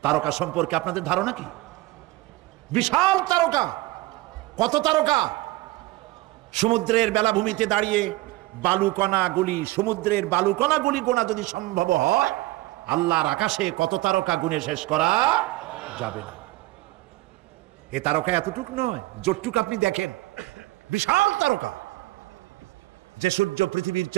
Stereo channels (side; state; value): left; quieter; 19.8 dB